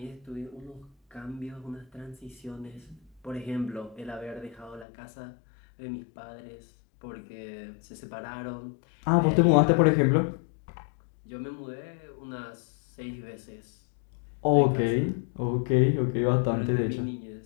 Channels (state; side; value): drops out; right; at 4.9 s